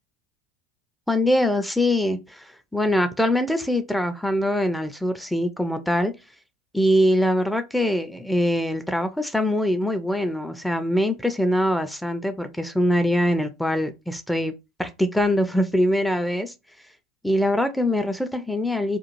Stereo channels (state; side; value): normal; both; correlation 0.85